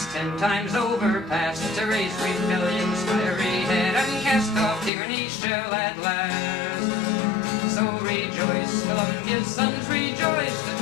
10 times overpast to raise rebellion's fiery head and cast off tyranny shall at last. So rejoice, Columbia's sons, rejoice, the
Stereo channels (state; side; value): drops out; right; at 4.9 s